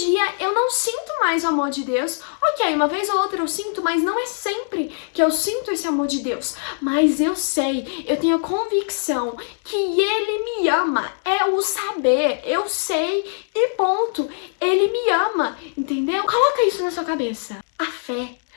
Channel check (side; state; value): right; silent; digital silence